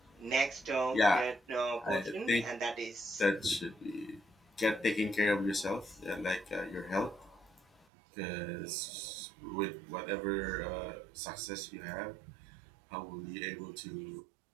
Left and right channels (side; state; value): left; drops out; at 7.9 s